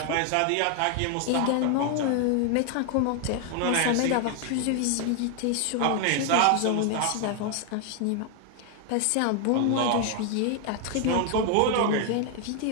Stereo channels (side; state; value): both; different; correlation 0.00